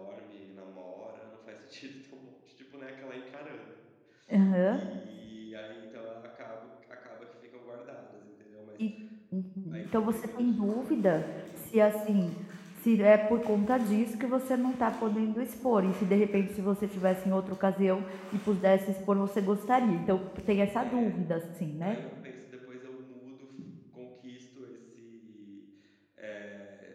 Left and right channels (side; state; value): both; identical; correlation 1.00